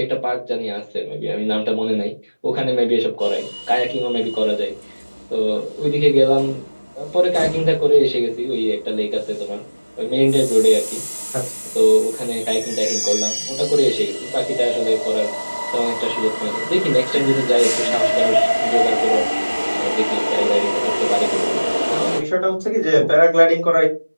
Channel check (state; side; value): inverted; both; correlation -1.00